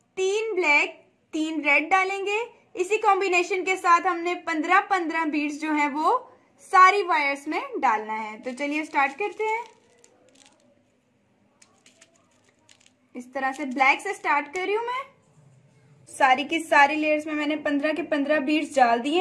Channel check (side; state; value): both; identical; correlation 1.00